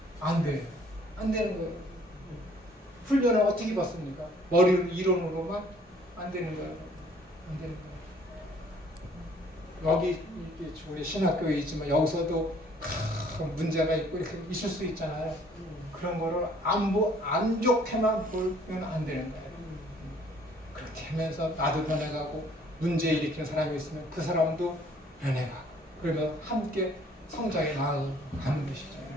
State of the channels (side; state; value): both; normal; correlation 0.59